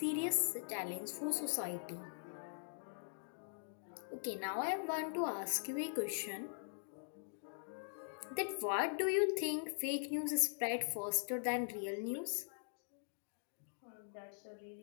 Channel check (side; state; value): right; silent; digital silence